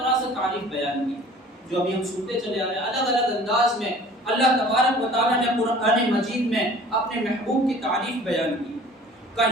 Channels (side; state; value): both; normal; correlation 0.48